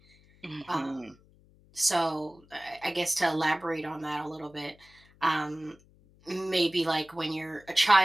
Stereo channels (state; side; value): noise; left; hum, 29 dB below the sound